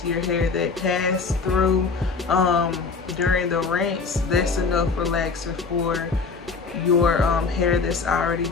of your hair that passed through during the rinse. That's enough relaxer for your hair that's already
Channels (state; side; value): quieter; right; 4.7 dB